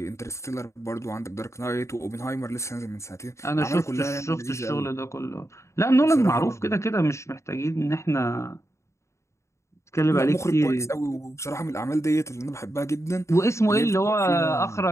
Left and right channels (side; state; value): right; late; 0.14 ms